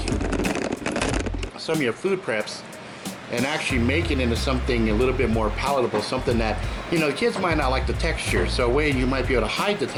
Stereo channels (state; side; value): identical; both; correlation 1.00